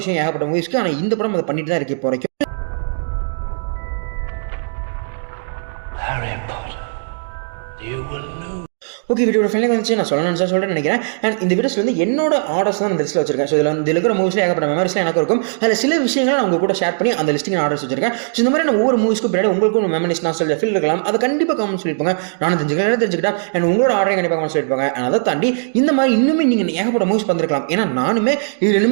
விஷயம் ஏகப்பட்ட மூவிஸ்க்கு. ஆனால் இந்த படம் அதை பண்ணிட்டு தான் இருக்கு இப்போ வரைக்கும். ஓகே, வீடியோட ஃபைனல் வந்துச்சு. நான் சொல்கிறேன்னு நினைக்கிறேன். அண்ட் இந்த வீடியோஸில் வந்து என்னோட ஆர்டர்ஸ் தான் இந்த லிஸ்ட்டில் வச்சிருக்கேன். ஸோ இதில் இருக்கிற மூவிஸில் ஏகப்பட்ட மெமரிஸ்லாம் எனக்கு இருக்கும். அதில் சில விஷயங்களை நான் உங்கள் கூட ஷேர் பண்ணி அந்த லிஸ்ட்டிங் ஆர்டர்ஸ் வச்சிருக்கேன். ஸோ இந்த மாதிரி நான் ஒவ்வொரு மூவிஸ்க்கும் பின்னாடி உங்களுக்கும் மெமரிஸ் நான் சொல்ல ஃபீல் இருக்கலாம். அதை கண்டிப்பாக கமெண்ட் சொல்லியிருப்பாங்க. நானும் தெரிஞ்சுக்கிட்டேன். அண்ட் உங்களோட ஆர்டரையும் கண்டிப்பாக கமெண்ட் சொல்லியிருப்பாங்க. அண்ட் அதை தாண்டி இந்த மாதிரி இன்னுமே நீங்கள் ஏகப்பட்ட மூவிஸ் பண்ணிருக்கலாம். ஏன்னா நானுமே இதில்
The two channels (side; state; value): left; silent; digital silence